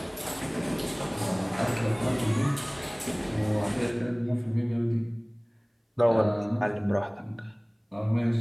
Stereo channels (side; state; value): both; identical; correlation 1.00